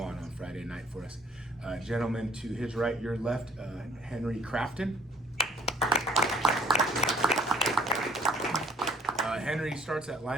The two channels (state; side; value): normal; both; correlation 0.59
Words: Friday night for us. Gentleman to his right, your left, Henry Crafton. Henry starts at